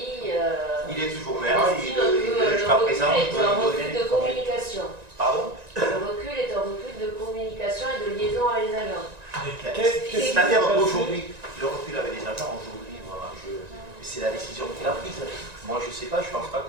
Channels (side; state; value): left; late; 1.9 ms